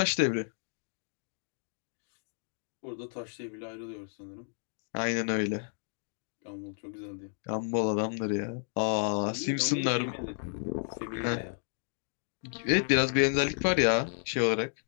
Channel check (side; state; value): right; silent; digital silence